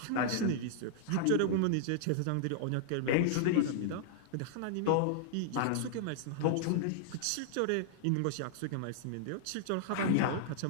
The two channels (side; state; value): both; different; correlation -0.01